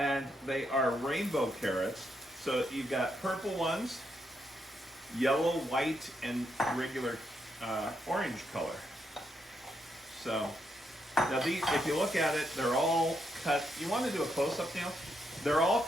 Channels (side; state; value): both; normal; correlation 0.80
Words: they are rainbow carrots. So you've got purple ones, yellow, white, and regular orange color. So now these, if you look at it, they're all cut. You want to do a close-up, Neil? They're all